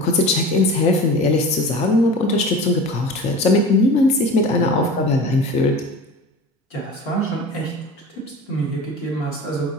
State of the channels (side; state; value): both; normal; correlation 0.35